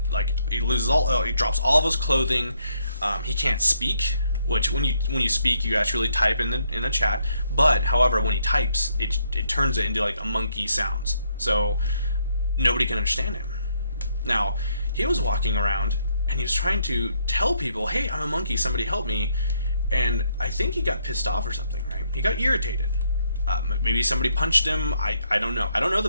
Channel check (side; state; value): both; inverted; correlation -0.73